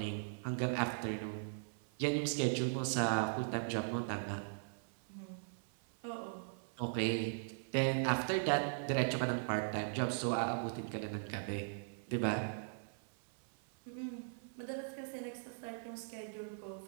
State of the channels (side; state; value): left; silent; 51 dB below the other